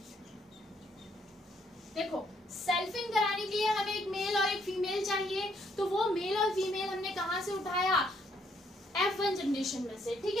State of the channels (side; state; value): both; normal; correlation 0.70